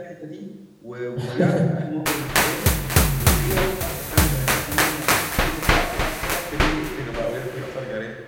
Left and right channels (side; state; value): both; identical; correlation 1.00